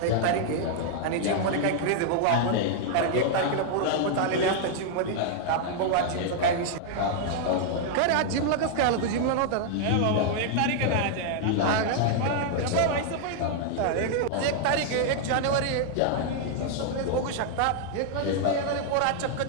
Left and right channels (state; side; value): different; both; correlation -0.01